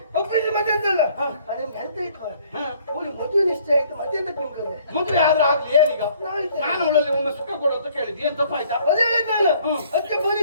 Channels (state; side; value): inverted; both; correlation -0.59